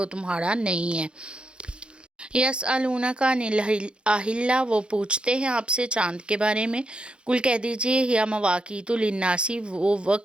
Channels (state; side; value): late; left; 0.055 ms